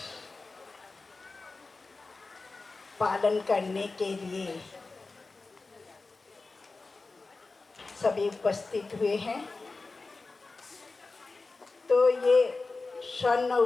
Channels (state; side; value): quieter; right; 3.7 dB